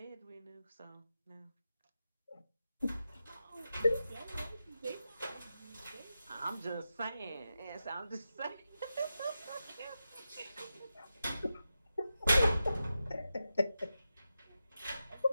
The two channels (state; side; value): inverted; both; correlation -0.90